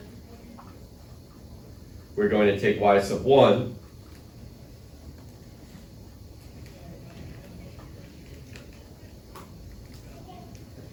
we're going to take y sub 1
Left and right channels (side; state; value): both; identical; correlation 1.00